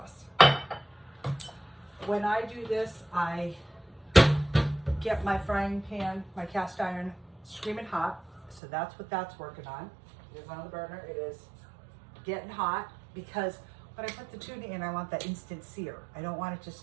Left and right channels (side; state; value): left; drops out; at 8.6 s